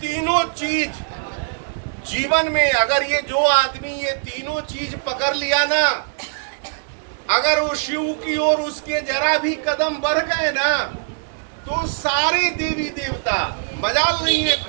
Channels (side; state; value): left; silent; digital silence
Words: तीनों चीज जीवन में, अगर ये जो आदमी ये तीनों चीज पकड़ लिया ना, अगर वो शिव की ओर उसके जरा भी कदम बढ़ गए ना, तो सारे देवी देवता, मजाल नहीं है